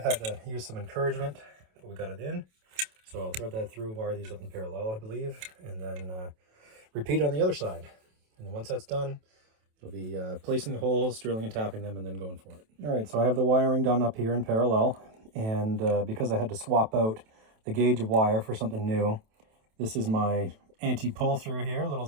Had to use some encouragement, but we got it in. So I'll thread that through, wire these up in parallel, I believe, and then repeat on the other side. And then once that's done, it'll be placing the holes, drilling and tapping them, and then going for it. All right, so I have the wiring done up here in parallel. And because I had to swap out the gauge of wire for something new, this is my anti-pull through here, little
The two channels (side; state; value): left; late; 27 ms